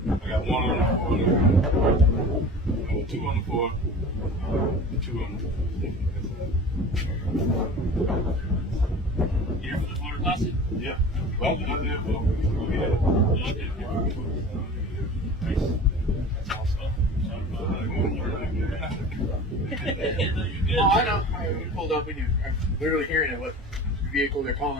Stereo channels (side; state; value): both; normal; correlation 0.38